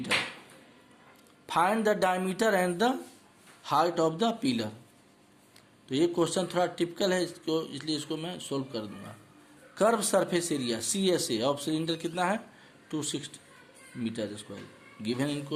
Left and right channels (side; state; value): both; identical; correlation 1.00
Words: Find the diameter and the height of the pillar. तो ये question थोड़ा टिपिकल है इसको, इसलिए इसको मैं सोल्व कर दूंगा। Curve surface area CSA of cylinder कितना है 260 metre square given in